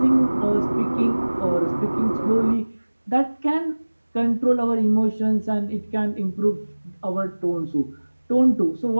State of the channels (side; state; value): both; inverted; correlation -1.00